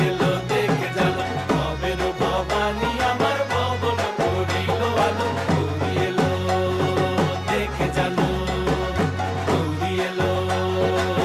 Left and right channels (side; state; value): both; identical; correlation 1.00